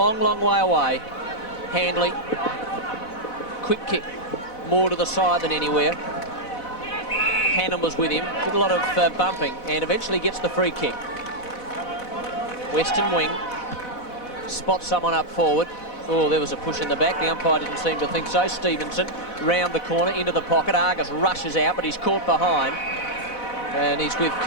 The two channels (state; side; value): late; right; 4.1 ms